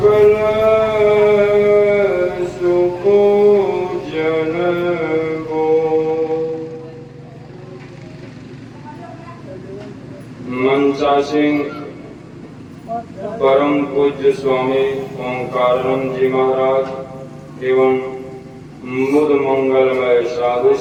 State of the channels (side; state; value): both; identical; correlation 1.00